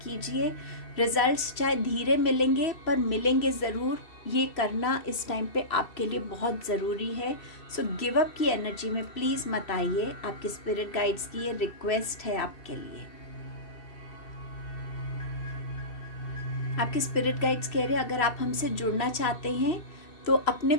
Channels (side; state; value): right; late; 2.7 ms